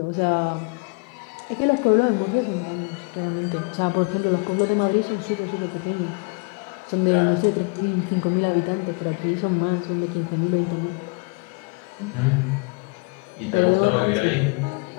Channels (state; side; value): quieter; right; 31.3 dB